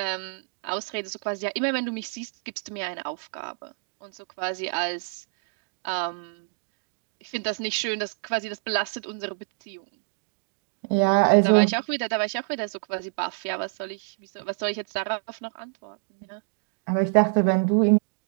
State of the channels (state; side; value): silent; left; 60 dB below the other